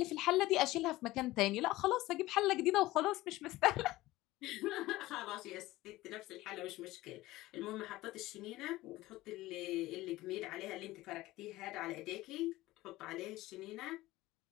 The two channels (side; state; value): right; quieter; 17.9 dB